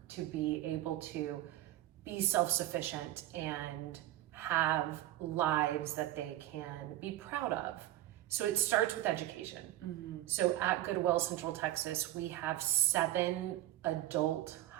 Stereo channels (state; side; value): quieter; left; 14.3 dB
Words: to be able to be self-sufficient and have lives that they can be proud of. So it starts with education. So at Goodwill Central Texas, we have 7 adult